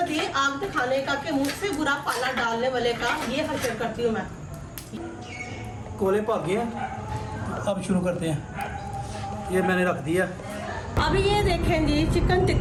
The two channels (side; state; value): both; identical; correlation 1.00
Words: ये आग दिखाने का कि मुझसे बुरा पाला डालने वाले का ये हशर करती हूँ मैं। कोले भाग गया, अब शुरू करते हैं। ये मैंने रख दिया। अभी ये देखें जी, चिकन